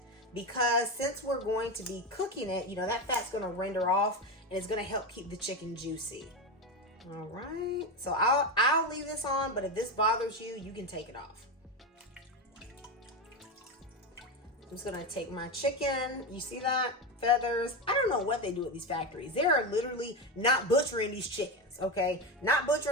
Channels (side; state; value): both; normal; correlation 0.16